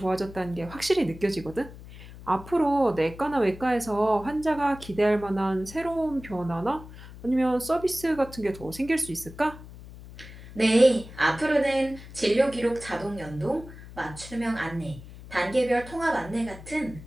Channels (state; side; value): noise; left; hum, 16 dB below the sound